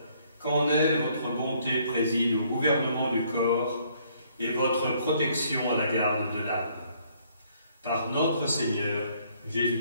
qu'en elle votre bonté préside au gouvernement du corps et votre protection à la garde de l'âme. Par notre Seigneur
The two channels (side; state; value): both; inverted; correlation -0.65